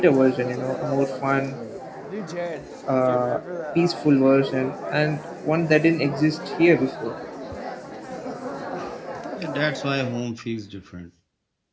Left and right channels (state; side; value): identical; both; correlation 1.00